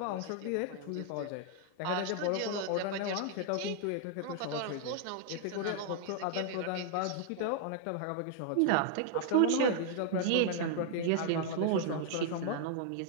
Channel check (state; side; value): different; both; correlation 0.00